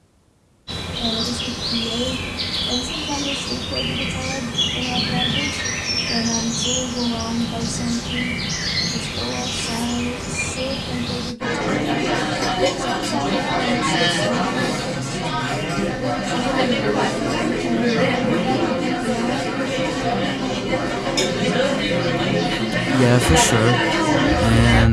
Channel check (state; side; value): identical; both; correlation 1.00